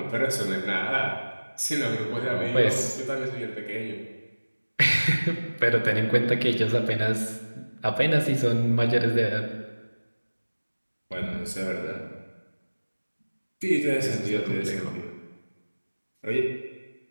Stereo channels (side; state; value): both; inverted; correlation -1.00